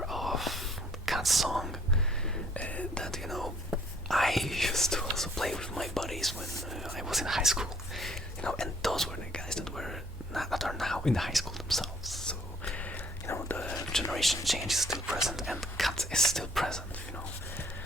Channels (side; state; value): both; normal; correlation 0.62